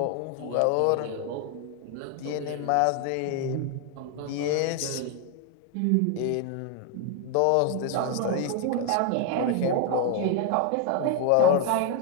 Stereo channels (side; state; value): both; different; correlation 0.01